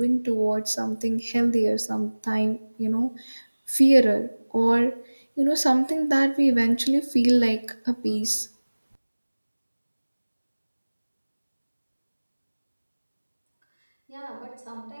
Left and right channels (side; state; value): both; inverted; correlation -1.00